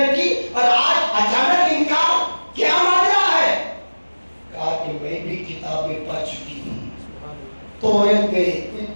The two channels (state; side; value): inverted; both; correlation -1.00